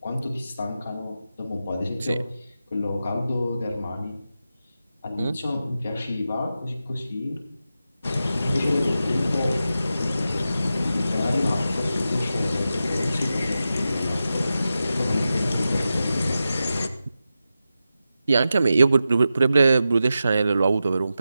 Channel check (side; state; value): both; inverted; correlation -0.91